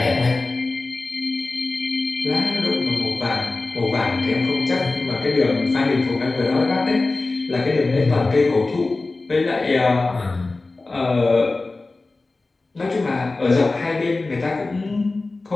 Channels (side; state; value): right; quieter; 3.4 dB